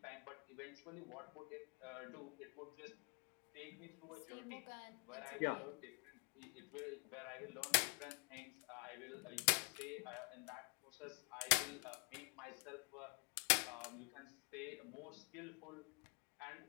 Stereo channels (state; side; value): quieter; right; 35.8 dB